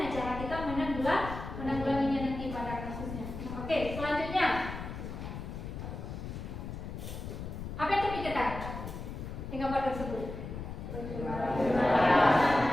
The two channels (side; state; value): left; noise; rumble, 8 dB below the sound